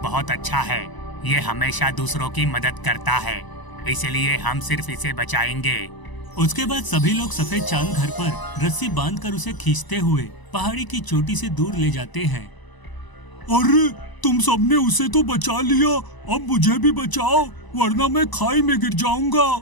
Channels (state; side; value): late; right; 1.0 ms